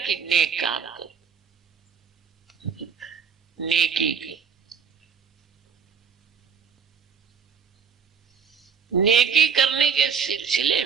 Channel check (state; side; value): quieter; left; 6.5 dB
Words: کہ نیک کام کرو، نیکی کی. نیکی کرنے کے سلسلے